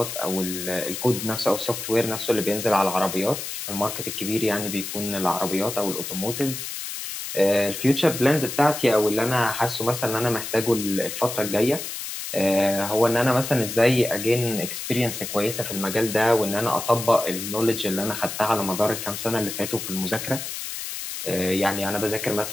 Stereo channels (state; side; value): noise; left; hiss, 6 dB below the sound